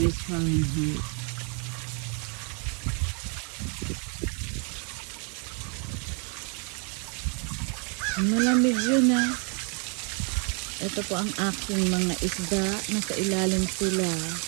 Fahrenheit. Malamig yun ah. Ito po ang aking mga isda. Nasa ilalim sila.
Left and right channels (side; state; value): left; quieter; 37.6 dB